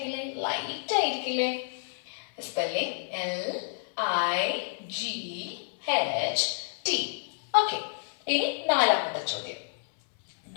ലൈറ്റ് ആയിരിക്കില്ലേ? Spelling LIGHT. ഓക്കെ, ഇനി നാലാമത്തെ ചോദ്യം.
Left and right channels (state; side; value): silent; right; 57 dB below the other